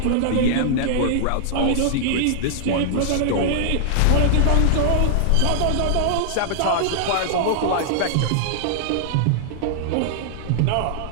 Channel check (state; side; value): different; both; correlation -0.01